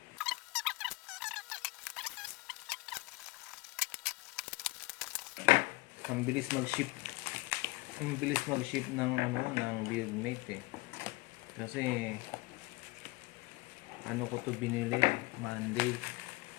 Ang bilis mag-ship. Ang bilis mag-ship ng ng buildmate eh. Kasi ano ko to binili Monday.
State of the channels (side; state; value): right; quieter; 23.0 dB